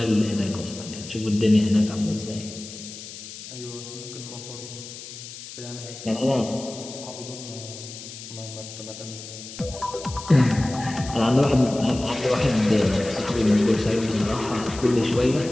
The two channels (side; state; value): left; noise; hiss, 13 dB below the sound